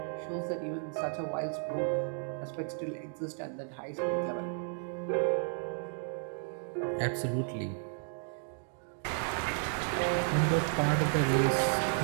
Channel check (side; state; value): left; silent; 56 dB below the other